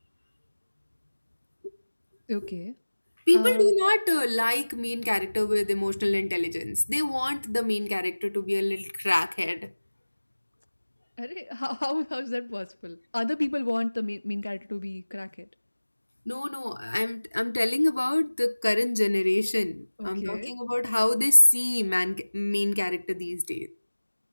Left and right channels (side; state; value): both; inverted; correlation -1.00